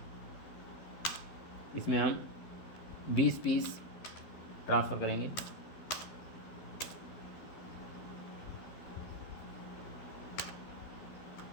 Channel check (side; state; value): right; late; 12 ms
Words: इसमें हम 20 पीस ट्रांसफ़र करेंगे।